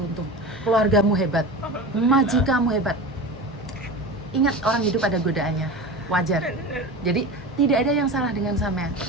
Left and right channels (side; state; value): both; normal; correlation 0.30